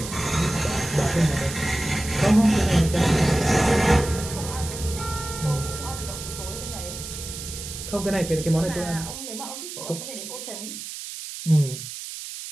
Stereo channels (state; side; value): noise; right; hiss, 9 dB below the sound